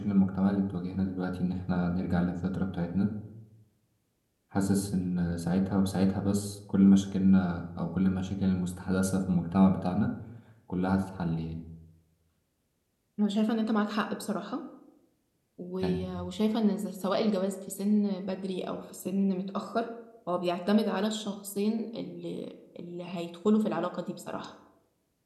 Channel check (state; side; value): identical; both; correlation 1.00